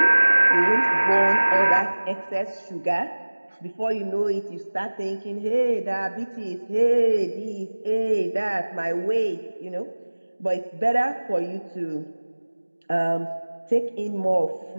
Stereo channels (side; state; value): both; inverted; correlation -1.00